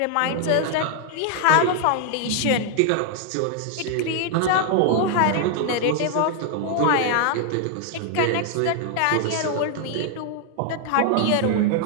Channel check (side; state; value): both; different; correlation 0.00